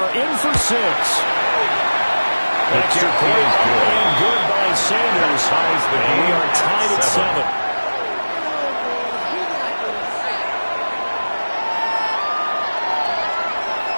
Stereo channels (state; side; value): inverted; both; correlation -1.00